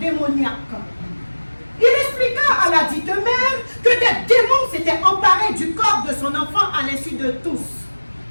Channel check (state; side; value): inverted; both; correlation -1.00